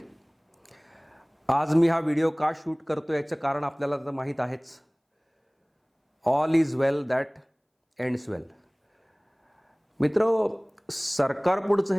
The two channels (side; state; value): both; identical; correlation 1.00